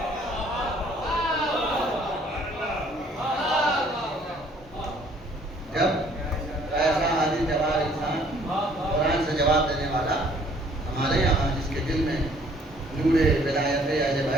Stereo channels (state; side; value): normal; both; correlation 0.59